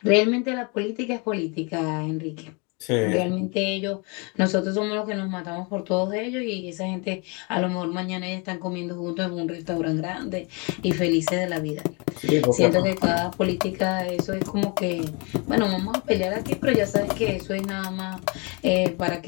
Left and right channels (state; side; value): quieter; right; 31.4 dB